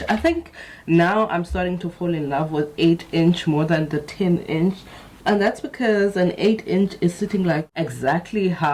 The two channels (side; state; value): both; identical; correlation 1.00